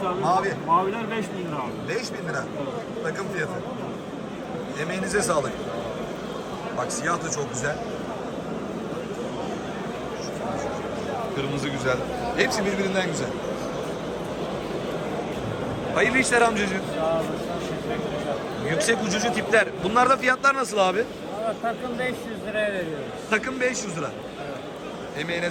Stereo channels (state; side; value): identical; both; correlation 1.00